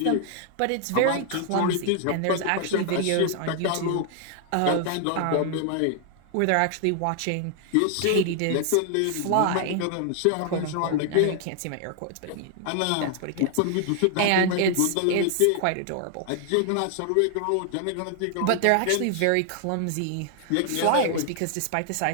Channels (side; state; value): both; different; correlation 0.00